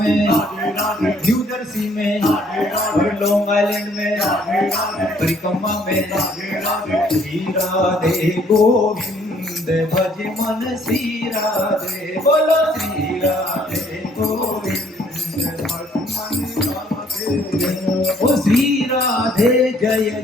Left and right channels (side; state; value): both; normal; correlation 0.63